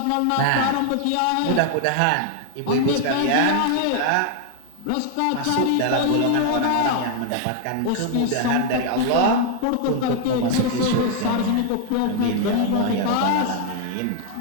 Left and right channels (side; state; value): both; different; correlation 0.00